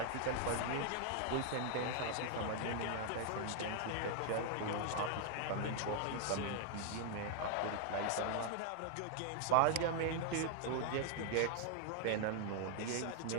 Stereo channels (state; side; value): different; both; correlation 0.00